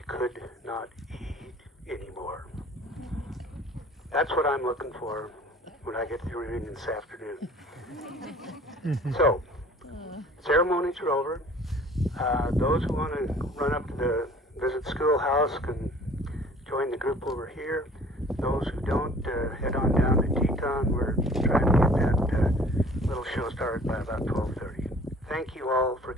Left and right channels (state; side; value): normal; both; correlation 0.50